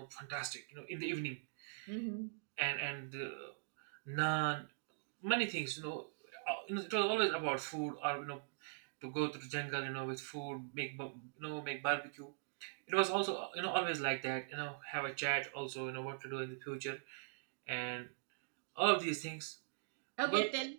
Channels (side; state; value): left; silent; digital silence